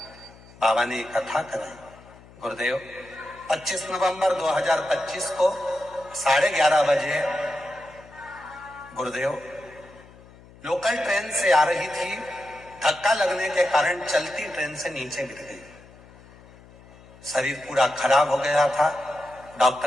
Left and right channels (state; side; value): noise; left; hum, 23 dB below the sound